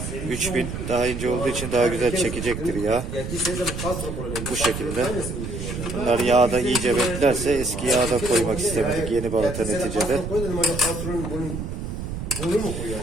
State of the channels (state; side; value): noise; right; rumble, 6 dB below the sound